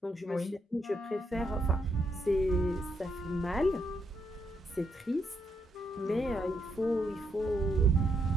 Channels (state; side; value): normal; both; correlation 0.77